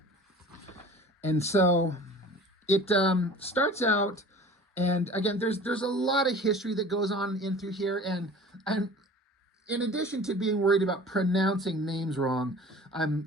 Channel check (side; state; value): both; normal; correlation 0.43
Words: And so it starts out, and again, there's a lot of history that goes on in through here, and in addition to being worried about pronouncing names wrong, I